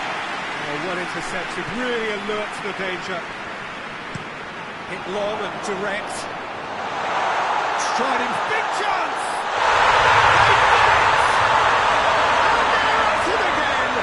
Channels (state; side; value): identical; both; correlation 1.00